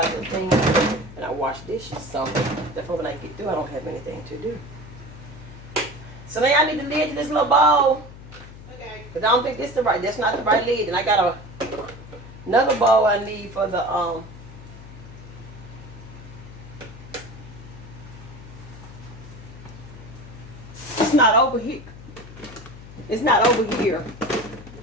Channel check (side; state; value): left; noise; hum, 16 dB below the sound